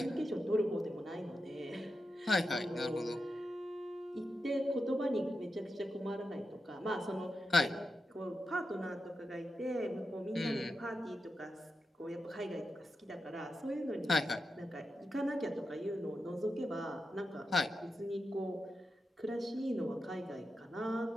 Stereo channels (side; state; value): both; normal; correlation 0.88